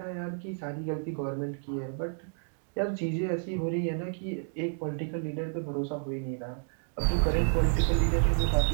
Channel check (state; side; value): silent; left; digital silence